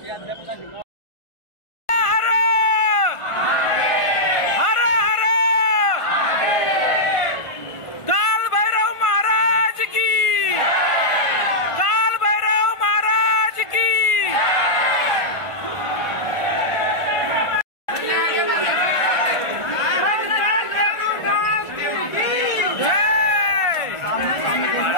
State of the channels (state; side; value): late; right; 1.5 ms